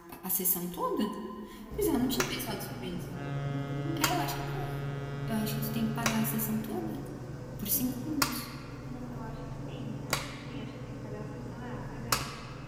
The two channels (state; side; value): identical; both; correlation 1.00